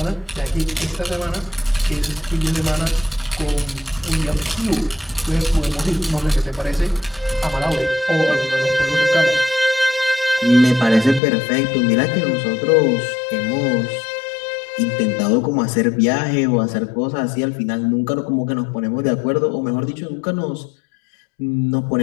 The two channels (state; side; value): drops out; right; at 11.2 s